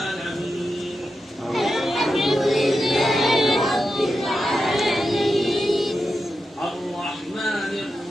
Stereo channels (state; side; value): normal; both; correlation 0.89